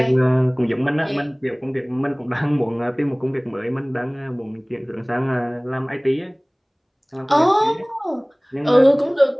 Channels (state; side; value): identical; both; correlation 1.00